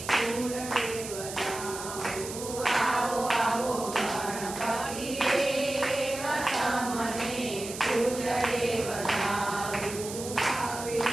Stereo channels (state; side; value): noise; right; hiss, 9 dB below the sound